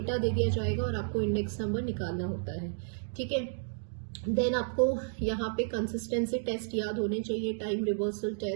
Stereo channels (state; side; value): silent; left; digital silence